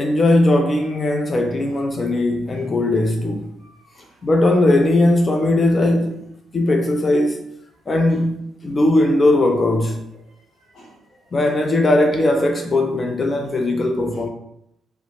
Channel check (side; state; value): both; normal; correlation 0.86